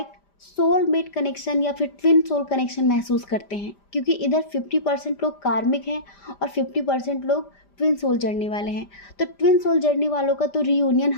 सोलमेट कनेक्शन या फिर ट्विन सोल कनेक्शन महसूस करते हैं, क्योंकि इधर 50% लोग कार्मिक हैं और 50% लोग ट्विन सोल जर्नी वाले हैं, तो ट्विन सोल जर्नी वालों का तो रीयूनियन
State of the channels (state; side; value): late; right; 5.0 ms